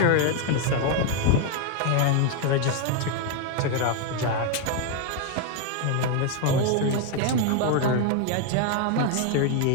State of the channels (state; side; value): different; both; correlation 0.01